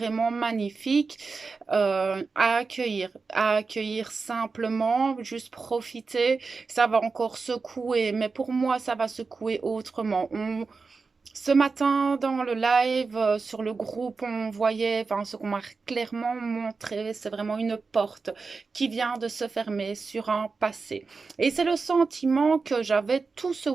magnifiques à accueillir simplement, juste profiter. Ça va encore secouer, mais pour moi ça va secouer autrement. Ce matin, dans le live, sur le groupe, on voyait, enfin, ce qu'on m'a clairement montré, c'est vraiment une porte qui vient de se fermer sur un passé. Et c'est le sentiment que j'avais tout ce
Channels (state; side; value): quieter; left; 4.4 dB